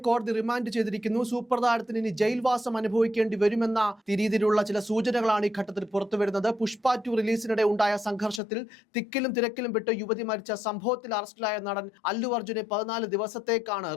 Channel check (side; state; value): right; drops out; at 8.4 s